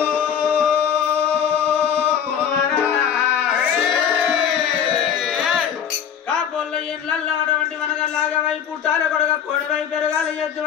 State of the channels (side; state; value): right; quieter; 8.4 dB